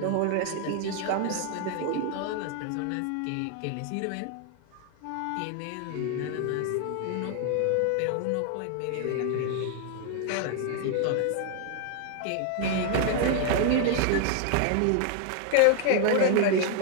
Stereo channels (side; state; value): both; different; correlation 0.00